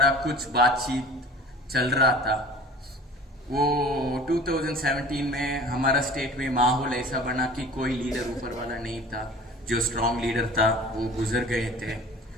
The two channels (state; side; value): normal; both; correlation 0.43